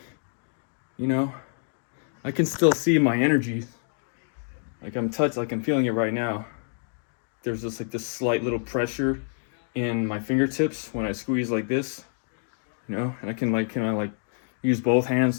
I can still see my energy. Like I'm feeling it right now. There's just like this slight little pressure in my fingertips when I squeeze like this, and I can use both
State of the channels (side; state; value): right; silent; 60 dB below the other